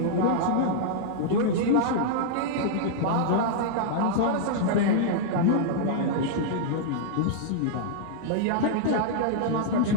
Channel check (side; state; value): both; different; correlation -0.01